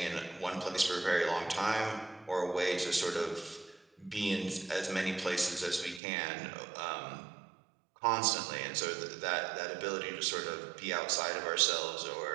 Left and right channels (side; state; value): left; drops out; at 6.0 s